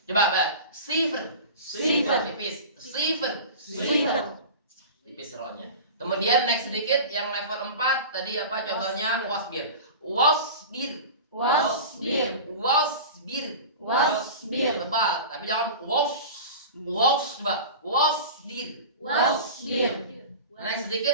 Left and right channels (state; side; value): inverted; both; correlation -0.34